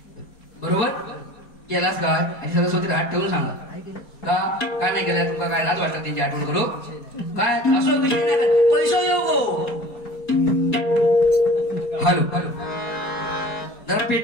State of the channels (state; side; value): late; right; 4.3 ms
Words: बरोबर केलास काय आणि सरस्वती हात ठेवून सांगा का नाही केलाय तुका काय लाज वाटत त्यांची आठवण करू काय असं विषय नाही पैसा येऊ. हॅलो हॅलो जरा